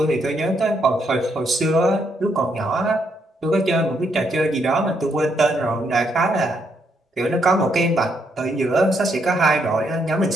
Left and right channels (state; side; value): normal; both; correlation 0.75